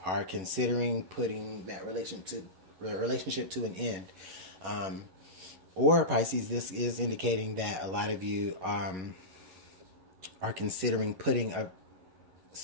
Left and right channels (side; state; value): left; late; 11 ms